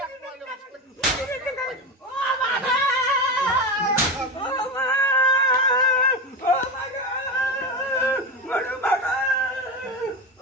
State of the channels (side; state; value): both; normal; correlation 0.19